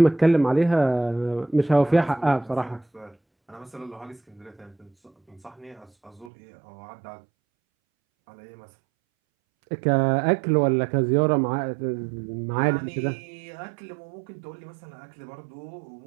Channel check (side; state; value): left; drops out; at 6.3 s